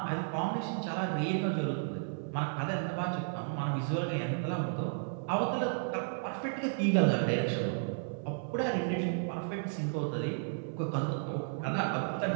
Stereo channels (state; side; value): silent; left; 56 dB below the other